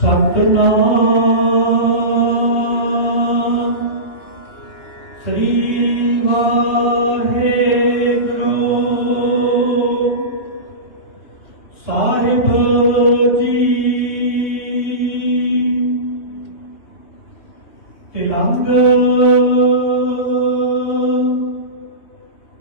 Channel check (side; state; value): right; late; 2.9 ms